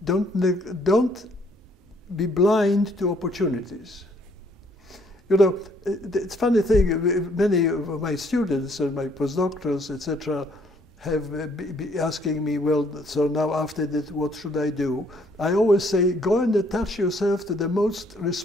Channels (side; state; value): both; normal; correlation 0.65